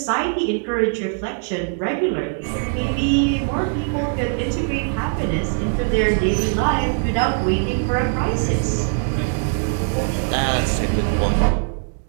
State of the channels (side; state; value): left; silent; 58 dB below the other